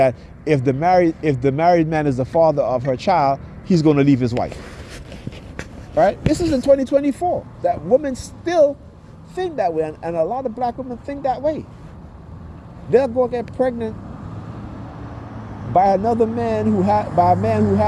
if the married man is the father of her child, he's going to leave his wife, right? This is in 2024. That women still think that way, and a lot of black women think that way. They'll go get pregnant by another man by a man who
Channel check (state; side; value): identical; both; correlation 1.00